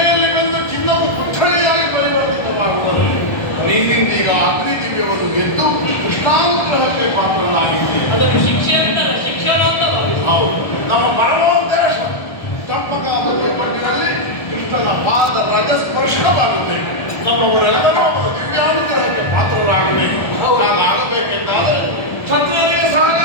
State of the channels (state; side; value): late; right; 1.3 ms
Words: ಬಂದು ಚಿನ್ನವು ಕುಠಳಿಯಾಗಿ ಪರಿವರ್ತಿತವಾಗುತ್ತದೆ. ನೀನಿಂದೀಗ ಅಗ್ನಿ ದಿವ್ಯವನ್ನು ಗೆದ್ದು ಕೃಷ್ಣಾನುಗ್ರಹಕ್ಕೆ ಪಾತ್ರನಾಗಿದ್ದೀಯ. ಅದನ್ನು ಶಿಕ್ಷೆ ಅಂತಲ್ಲ, ಶಿಕ್ಷಣ ಅಂತ ಭಾವಿಸಿ. ಹೌದು, ನಮ್ಮ ಪರಮೋದ್ದೇಶ ಚಂಪಕಾವತಿಯ ಮಣ್ಣಿನಲ್ಲಿ ಕೃಷ್ಣನ ಪಾದ ರಜಸ್ಪರ್ಶವಾಗಬೇಕು. ನಮ್ಮವರೆಲ್ಲರೂ ಅವರ ದಿವ್ಯಾನುಗ್ರಹಕ್ಕೆ ಪಾತ್ರರಾಗಬೇಕು. ಹಾಗಾಗಬೇಕೆಂದಾದರೆ ಕ್ಷತ್ರಿಯರಿಗೆ